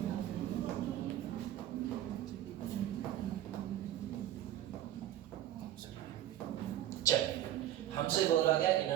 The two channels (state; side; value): quieter; left; 12.5 dB